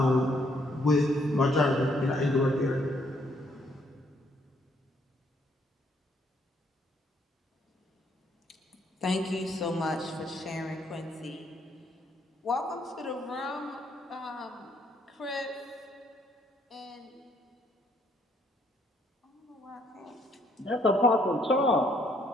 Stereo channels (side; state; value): both; normal; correlation 0.69